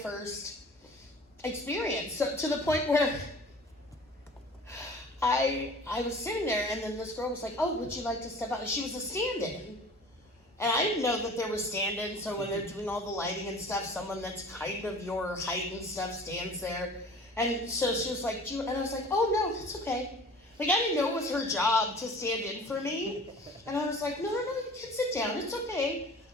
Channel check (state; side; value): normal; both; correlation 0.44